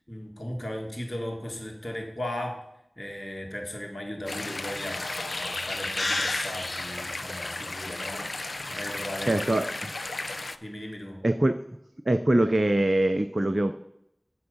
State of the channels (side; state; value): both; normal; correlation 0.96